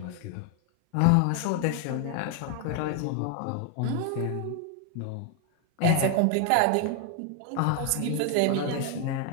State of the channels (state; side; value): different; both; correlation 0.00